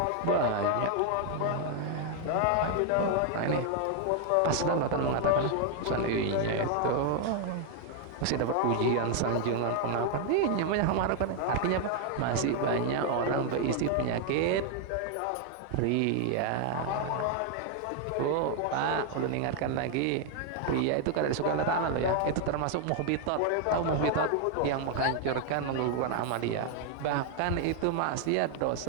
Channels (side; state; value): both; different; correlation 0.00